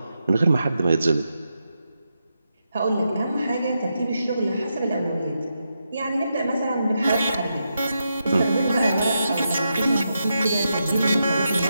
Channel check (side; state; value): both; inverted; correlation -0.85